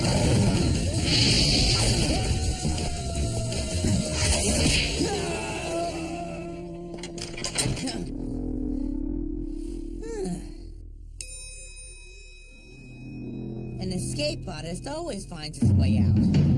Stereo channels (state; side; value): identical; both; correlation 1.00